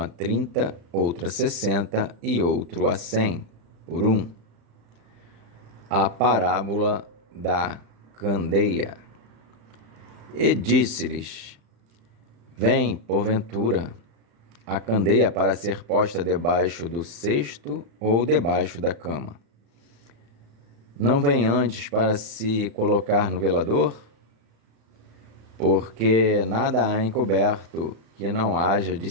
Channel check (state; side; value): late; left; 35 ms